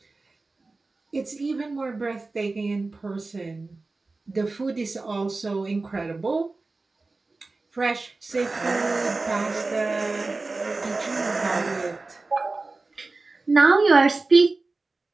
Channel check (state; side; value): quieter; left; 3.5 dB